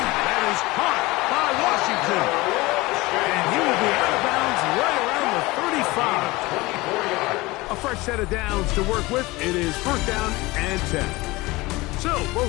That is caught by Washington. And he will be out of bounds right around the 35. A fresh set of downs to work with. It is 1st down and 10. So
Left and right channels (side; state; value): right; quieter; 21.5 dB